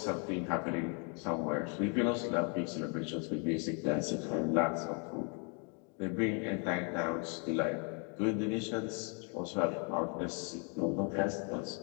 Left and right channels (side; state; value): right; quieter; 37.4 dB